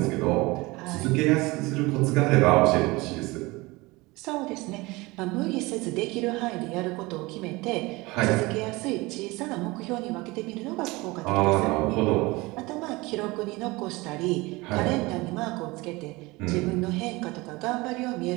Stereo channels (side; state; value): left; quieter; 22.6 dB